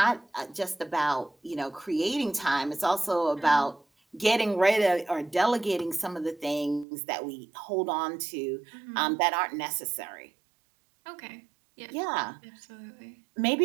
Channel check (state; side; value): drops out; left; at 6.9 s